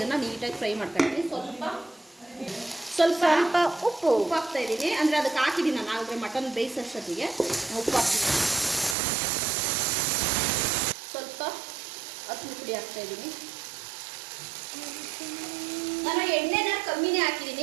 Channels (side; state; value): left; drops out; at 9.0 s